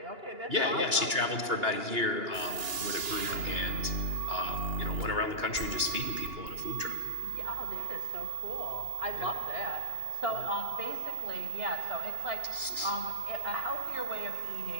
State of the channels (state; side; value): late; left; 2.9 ms